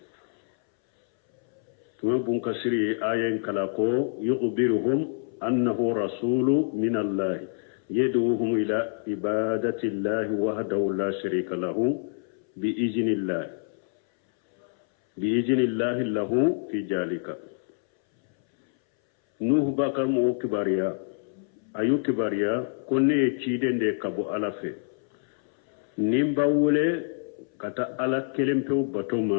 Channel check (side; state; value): right; silent; 60 dB below the other